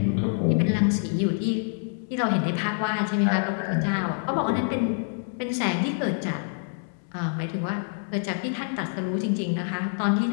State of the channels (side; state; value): right; silent; 61 dB below the other